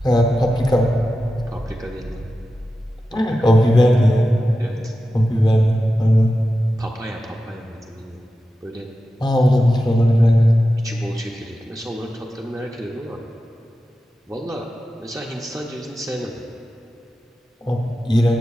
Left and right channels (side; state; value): both; normal; correlation 0.92